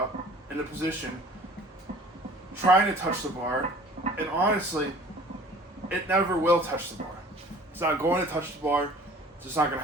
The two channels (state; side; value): normal; both; correlation 0.48